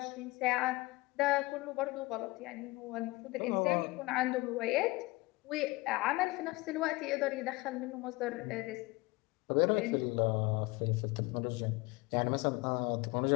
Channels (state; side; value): quieter; right; 22.4 dB